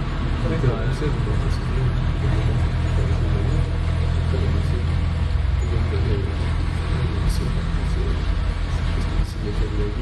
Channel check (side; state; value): both; identical; correlation 1.00